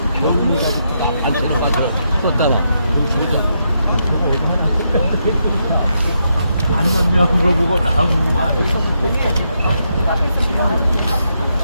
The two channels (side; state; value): both; inverted; correlation -0.81